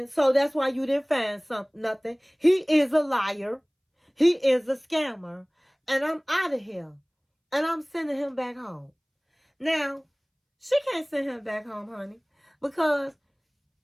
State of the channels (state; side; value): identical; both; correlation 1.00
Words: so that's why you didn't find nothing. He is a liar. He is a scammer. And I'm out of here. And I'm sending him back home. Now, she can't send him back home, honey, because